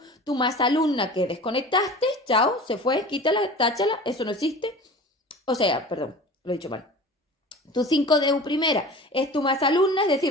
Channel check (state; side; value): normal; both; correlation 0.38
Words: más alumna que desconectaste, chao, se fue, quítala, táchala, eso no existe. O sea, perdón, lo he dicho mal. Tu 5DU primera es tu más alumna, es